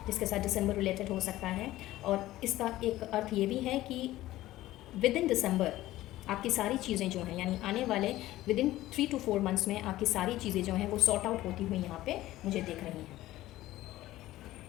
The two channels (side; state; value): right; quieter; 15.9 dB